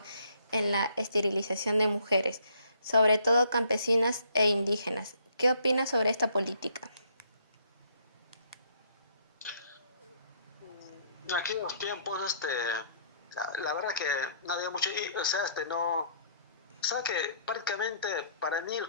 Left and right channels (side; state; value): both; inverted; correlation -0.64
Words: en la esterilización de mujeres, sobre todo campesinas e indígenas. ¿Qué opinas sobre esta política? En aquellos tiempos, la verdad que no había mucho, o sea, no, o sea que prácticamente para mí lo